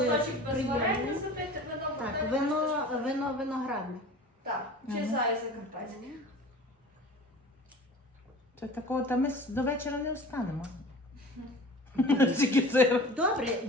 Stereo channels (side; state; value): both; normal; correlation 0.40